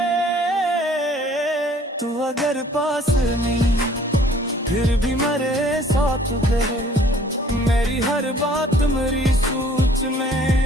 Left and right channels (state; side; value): normal; both; correlation 0.56